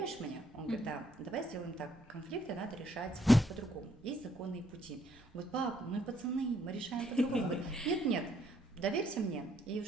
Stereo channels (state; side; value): normal; both; correlation 0.69